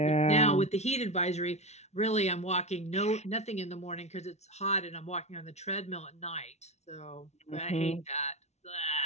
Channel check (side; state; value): right; late; 0.32 ms